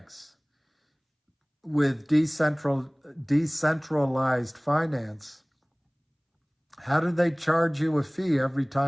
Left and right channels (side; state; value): both; identical; correlation 1.00